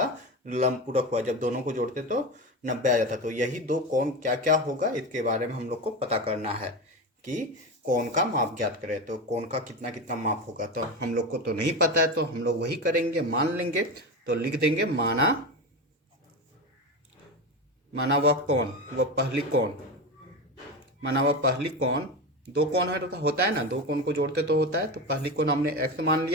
लंब पूरक हुआ, जब दोनों को जोड़ते तो 90 आ जाता। तो यही दो कोण क्या क्या होगा इसके बारे में हम लोग को पता करना है कि कोण का माप ज्ञात करें। तो कोण का कितना कितना माप होगा, तो हम लोग को तो नहीं पता है, तो हम लोग वही करेंगे, मान लेंगे। तो लिख देंगे माना वह कोण, वह पहली कोण, माना वह पहली कोण, दो कोण है तो होता है ना, दो कोण को जोड़ते तो होता है, तो पहली कोण हमने x मान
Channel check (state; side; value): normal; both; correlation 0.21